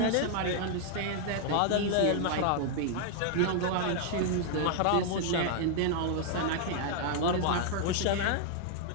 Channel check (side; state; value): both; different; correlation 0.00